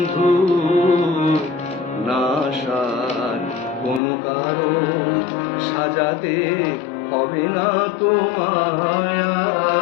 নাশার কোনো কারণ সাজাতে হবে না তোমায়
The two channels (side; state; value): right; drops out; at 4.0 s